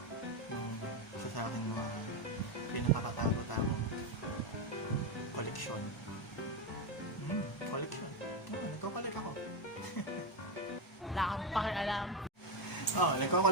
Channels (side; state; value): both; normal; correlation 0.09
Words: yung isa sa aking mga pinakakatago-tagong koleksyon. Koleksyon? Nagko-collect ako. Wala kang pakialam.